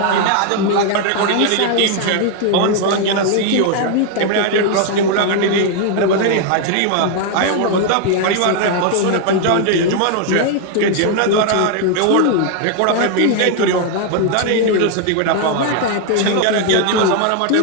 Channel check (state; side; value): different; both; correlation 0.00